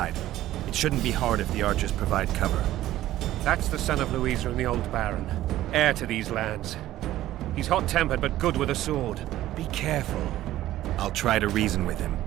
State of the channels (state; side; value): quieter; left; 14.3 dB